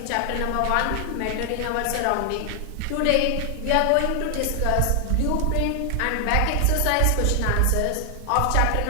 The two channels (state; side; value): different; both; correlation 0.00